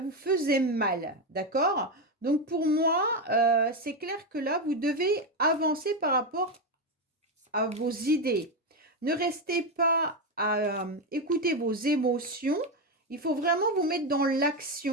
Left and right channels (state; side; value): normal; both; correlation 0.10